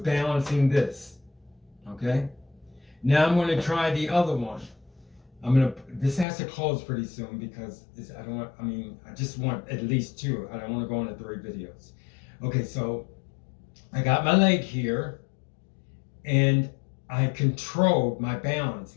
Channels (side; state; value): right; drops out; at 6.2 s